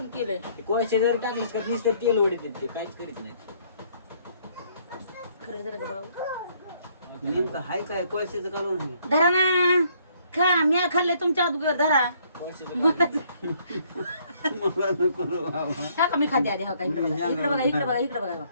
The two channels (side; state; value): both; inverted; correlation -0.65